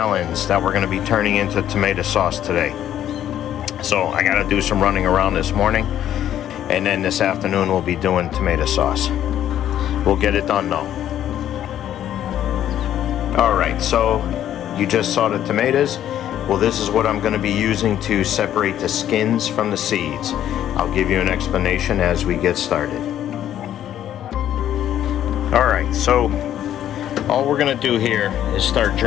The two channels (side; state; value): right; quieter; 11.2 dB